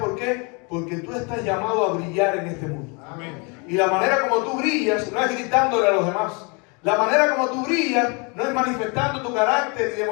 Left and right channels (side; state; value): right; quieter; 32.1 dB